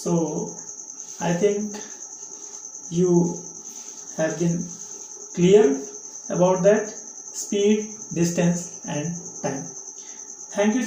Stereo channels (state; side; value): identical; both; correlation 1.00